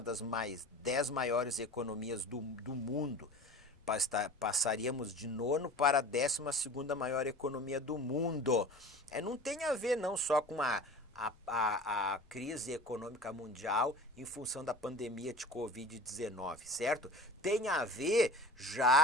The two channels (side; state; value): left; noise; rumble, 29 dB below the sound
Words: das 10 maiores economias do mundo. Passaríamos de nono para a 12ª maior economia do mundo. Não tem a ver não só com a crise econômica mundial em função da pandemia de Covid-19, certo? Tem a ver